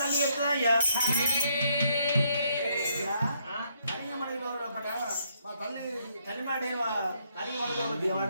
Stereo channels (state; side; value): inverted; both; correlation -0.72